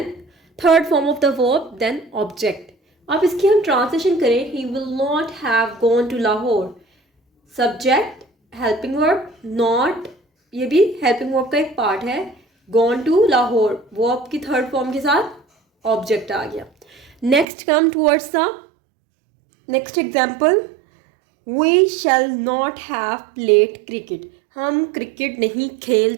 third form of the verb, then object. अब इसकी हम ट्रांसलेशन करें, he will not have gone to Lahore. Subject helping verb, not, ये भी हेल्पिंग वर्ब का एक पार्ट है, गॉन टू लाहौर, वर्ब की थर्ड फॉर्म के साथ ऑब्जेक्ट आ गया। Next come towards the next example, we shall not have played cricket. हम क्रिकेट नहीं खेल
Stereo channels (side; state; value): left; drops out; at 17.4 s